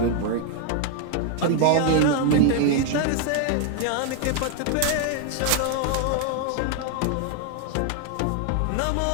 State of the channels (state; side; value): different; both; correlation 0.00